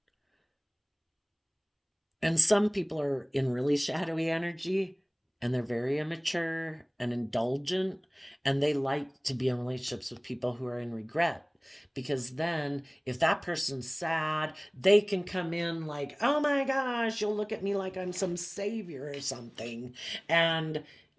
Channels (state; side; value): identical; both; correlation 1.00